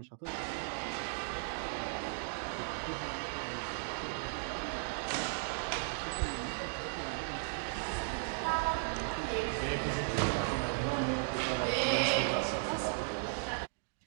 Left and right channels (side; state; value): left; silent; digital silence